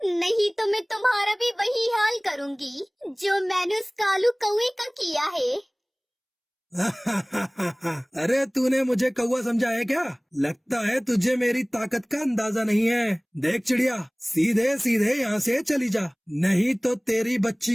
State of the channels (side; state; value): both; identical; correlation 1.00